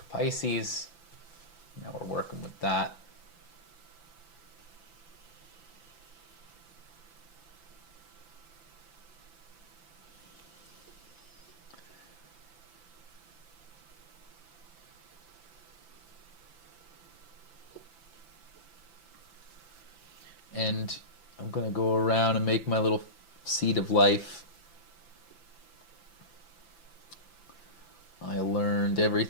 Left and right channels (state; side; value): late; right; 5.9 ms